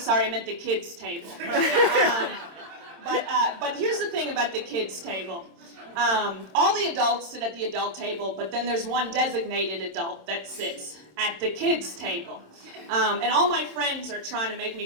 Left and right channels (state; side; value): late; left; 26 ms